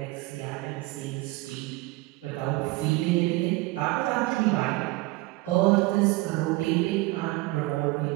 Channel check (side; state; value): left; quieter; 21.0 dB